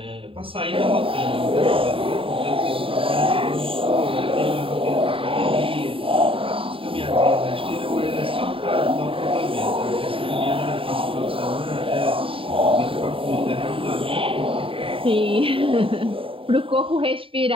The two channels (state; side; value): late; left; 0.26 ms